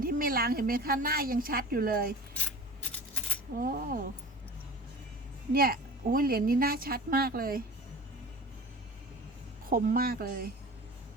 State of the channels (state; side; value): normal; both; correlation 0.39